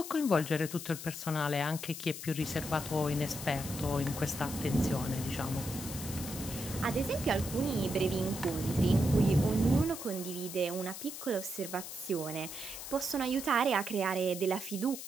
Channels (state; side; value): noise; left; hiss, 9 dB below the sound